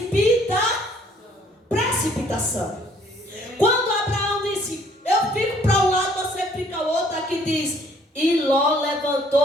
precipitação. Quando Abraão disse: eu fico para um lado, você fica significa o outro, aqui diz, e Ló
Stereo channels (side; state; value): both; normal; correlation 0.61